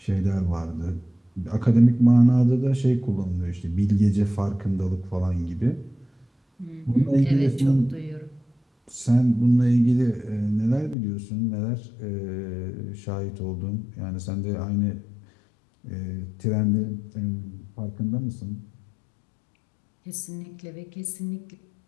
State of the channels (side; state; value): right; drops out; at 11.0 s